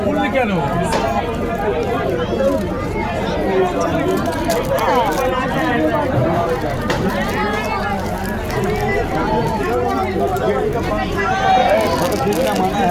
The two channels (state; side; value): identical; both; correlation 1.00